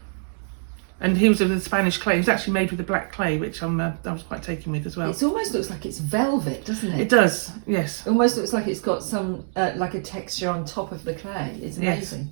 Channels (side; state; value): left; silent; 62 dB below the other